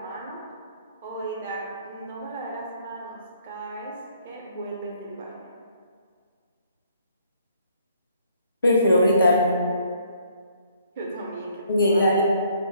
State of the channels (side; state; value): both; inverted; correlation -0.64